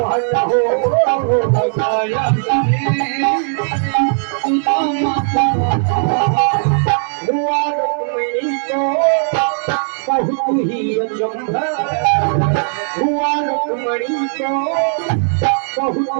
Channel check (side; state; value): left; silent; digital silence